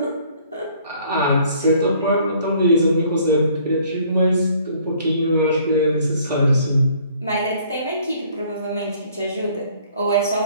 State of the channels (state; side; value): inverted; both; correlation -0.59